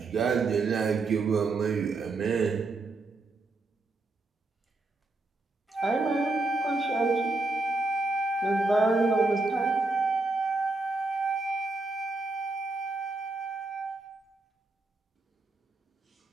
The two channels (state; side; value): quieter; left; 3.3 dB